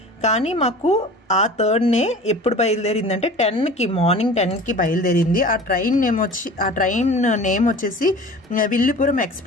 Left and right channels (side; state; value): both; normal; correlation 0.40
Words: కానీ మాకు ఆ 3rd ఎప్పుడు బయలుదేరిందంటే 10కి, మార్నింగ్ 10కి బయలుదేరింది. ఆ ట్రైన్ నేమ్ వచ్చేసి విల్లుపురం